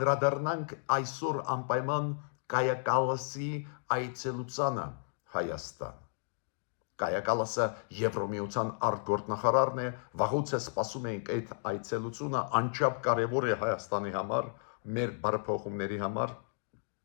այսօր անպայման Կայա Կալասի այցելությանը Հայաստան։ Կայա Կալասը Եվրոմիության արտգործնախարարն է, վաղուց է սպասում ենք այդ այցելությունը, անչափ կարևոր է Հայաստանի համար, մեր բարեփոխումների համար։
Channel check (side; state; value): right; silent; digital silence